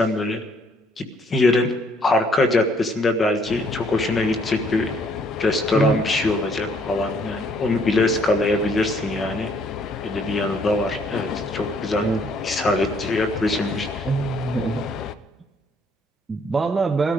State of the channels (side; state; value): both; normal; correlation 0.64